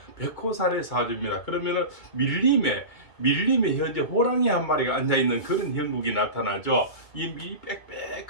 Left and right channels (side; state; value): right; late; 2.2 ms